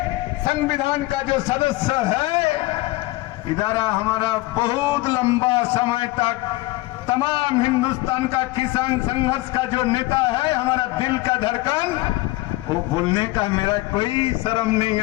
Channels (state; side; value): quieter; right; 20.0 dB